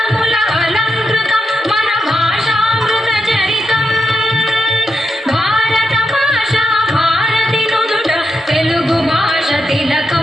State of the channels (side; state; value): both; normal; correlation 0.84